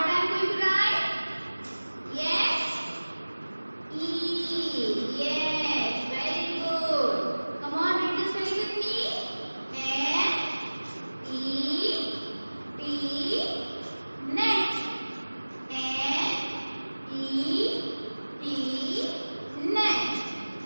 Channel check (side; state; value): both; inverted; correlation -1.00